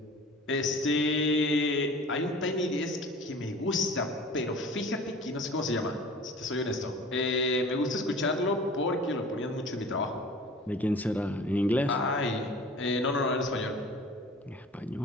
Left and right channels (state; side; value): normal; both; correlation 0.43